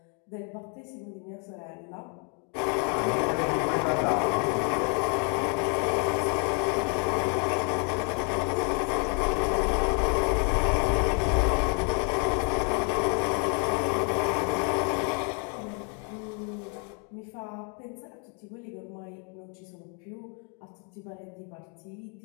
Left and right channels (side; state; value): right; quieter; 38.5 dB